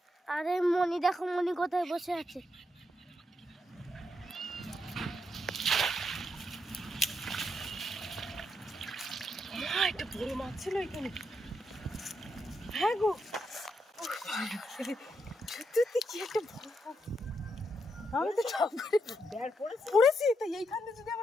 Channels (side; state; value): both; normal; correlation 0.80